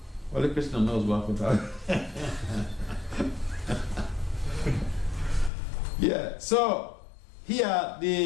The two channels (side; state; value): right; drops out; at 5.5 s